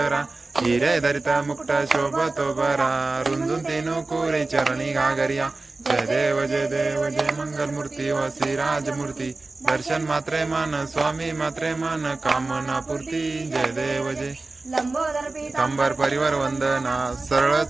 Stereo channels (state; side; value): quieter; left; 3.4 dB